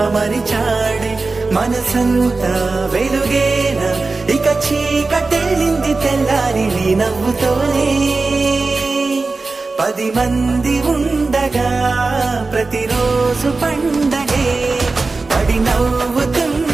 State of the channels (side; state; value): left; quieter; 3.8 dB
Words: మరిచాడే మనసంతా వెలుగేన ఇక చీకటెళ్ళింది తెల్లారి నీ నవ్వుతోనే 10 మంది ఉండగా ప్రతిరోజు పండగే పడి